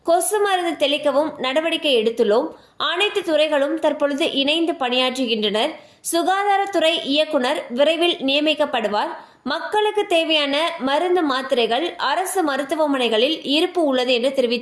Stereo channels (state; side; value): identical; both; correlation 1.00